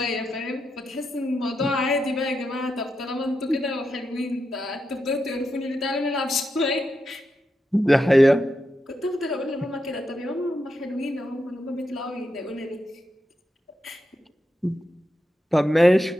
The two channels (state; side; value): normal; both; correlation 0.86